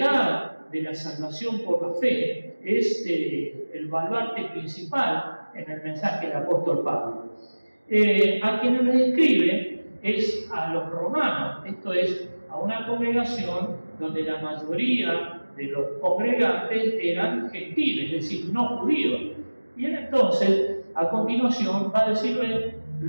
de la salvación por la fe es el baluarte principal en el mensaje del apóstol Pablo. A quienes le escribe es a los romanos, esto es, a una congregación donde la mayoría de los congregantes eran gentiles, es decir, no judíos. Y él entonces, a continuación, va a decirle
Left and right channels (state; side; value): inverted; both; correlation -1.00